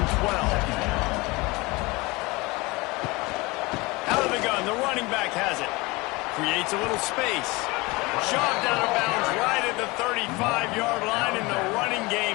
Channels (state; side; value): quieter; right; 23.7 dB